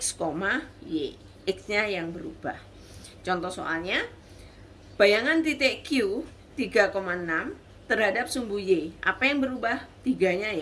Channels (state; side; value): identical; both; correlation 1.00